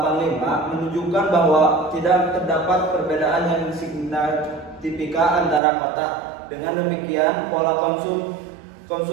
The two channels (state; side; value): drops out; left; at 5.6 s